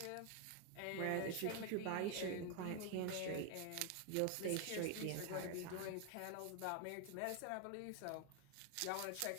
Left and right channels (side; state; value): both; different; correlation 0.01